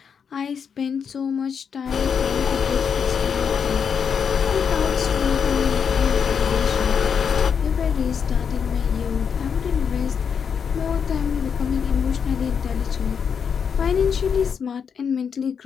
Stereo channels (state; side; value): quieter; right; 6.8 dB